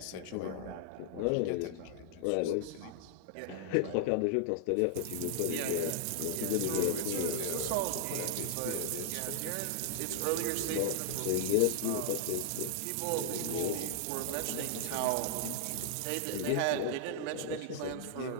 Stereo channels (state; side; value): different; both; correlation 0.00